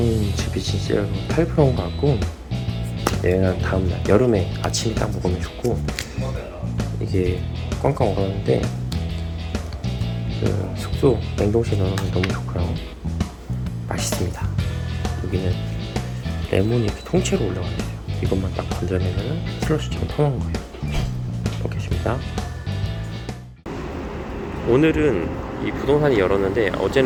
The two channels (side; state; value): both; identical; correlation 1.00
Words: 즙이 진짜 8%인 것 같고, 얘는 다음날 여름에 아침에 딱 먹으면 좋고, 이게 꽝꽝 얼었는데 그 숙소 냉동실에 넣으면 너무 좋고요. 맛있습니다. 여기는 레몬이 이렇게 통째로 올라가 있어요. 이것만 딱 건져내면 슬러시처럼 퍼먹는 거예요. 먹겠습니다. 오늘은 이 부동산이 열었는데